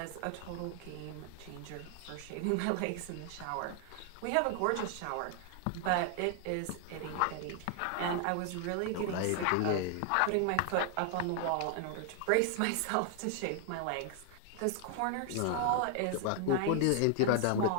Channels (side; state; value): both; different; correlation 0.00